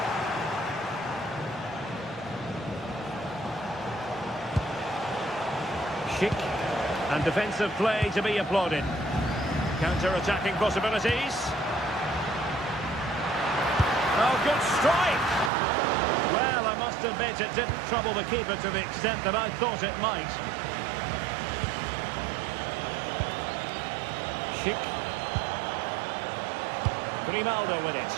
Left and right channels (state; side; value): drops out; left; at 15.5 s